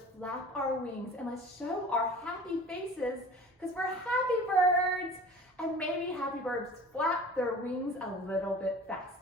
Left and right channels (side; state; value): both; normal; correlation 0.43